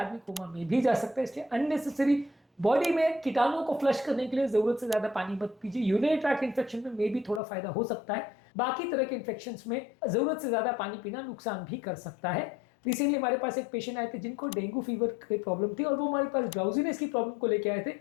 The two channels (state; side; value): drops out; right; at 7.4 s